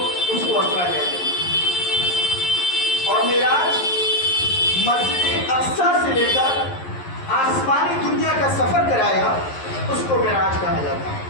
اس کو اسرا کہتے ہیں۔ اور معراج مسجد اقصی سے لے کر آسمانی دنیا کا سفر کرایا، اس کو معراج کہا جاتا ہے۔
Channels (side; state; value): right; late; 11 ms